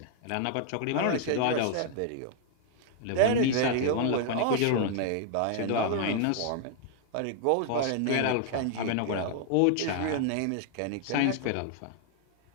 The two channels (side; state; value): both; different; correlation 0.00